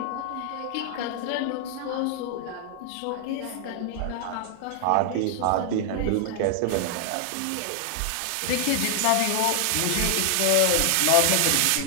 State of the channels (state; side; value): different; both; correlation 0.00